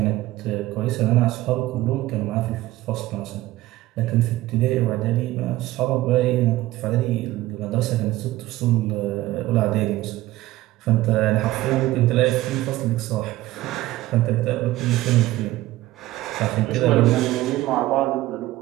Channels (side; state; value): left; quieter; 16.7 dB